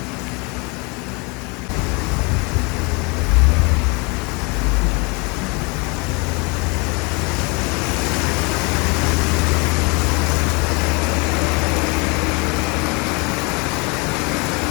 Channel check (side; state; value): right; quieter; 29.7 dB